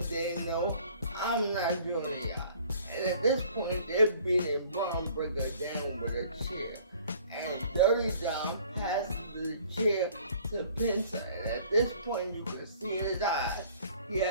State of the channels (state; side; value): inverted; both; correlation -0.53